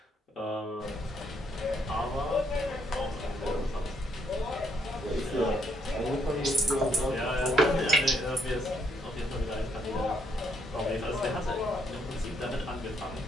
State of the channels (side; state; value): both; normal; correlation 0.72